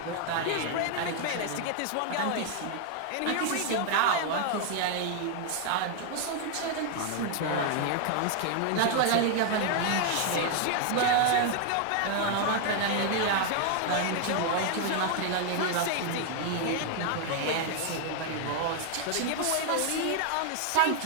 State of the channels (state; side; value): different; both; correlation 0.00